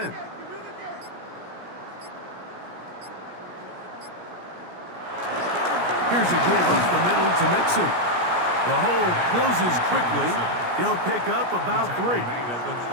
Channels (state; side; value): late; left; 17 ms